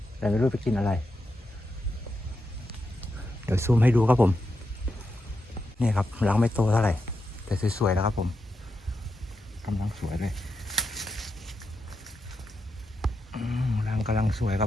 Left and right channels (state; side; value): normal; both; correlation 0.86